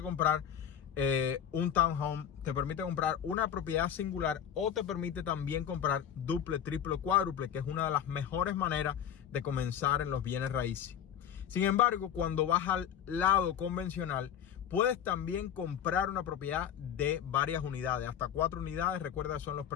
comprar un townhome, te permite comprar una propiedad singular, o te permite también comprar duple, triple, cuádruple, que es una de las mejores maneras de comenzar en los bienes raíces. Sin embargo, cuando vas al lado convencional, puedes también comprar una propiedad de varias unidades, hasta 4 unidades. Recuerda, son los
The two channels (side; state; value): right; quieter; 9.1 dB